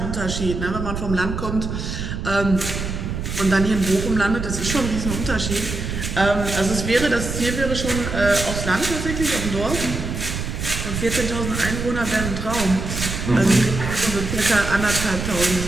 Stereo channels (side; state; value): right; noise; rumble, 4 dB below the sound